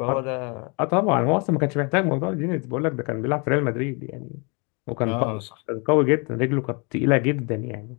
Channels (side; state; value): right; quieter; 32.4 dB